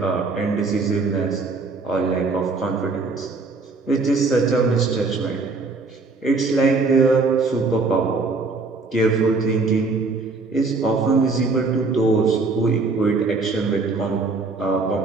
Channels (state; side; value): quieter; left; 3.9 dB